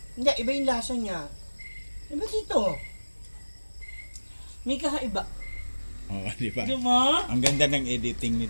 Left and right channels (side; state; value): both; inverted; correlation -1.00